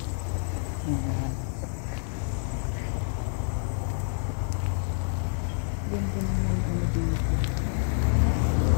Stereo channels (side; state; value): right; silent; digital silence